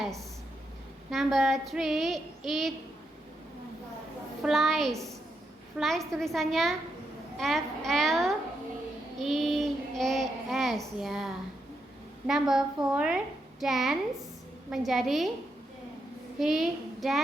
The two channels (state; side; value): normal; both; correlation 0.82